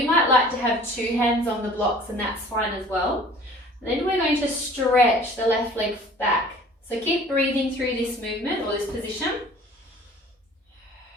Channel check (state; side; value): normal; both; correlation 0.49